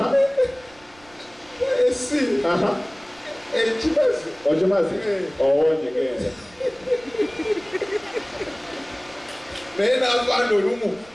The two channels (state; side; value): noise; right; rumble, 27 dB below the sound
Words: C Ochimazi owonyegenda naye n'avaana olumu